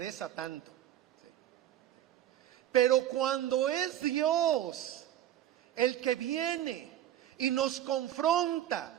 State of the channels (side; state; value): left; quieter; 11.9 dB